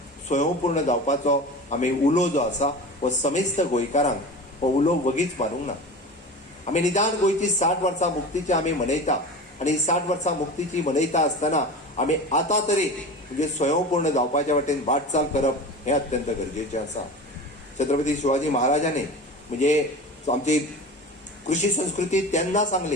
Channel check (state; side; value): normal; both; correlation 0.32